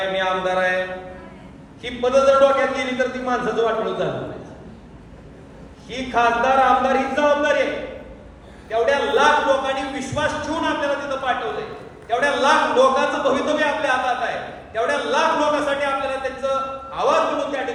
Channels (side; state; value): both; identical; correlation 1.00